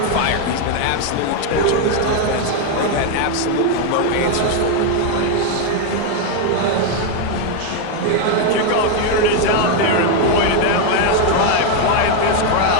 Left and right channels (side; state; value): both; different; correlation 0.01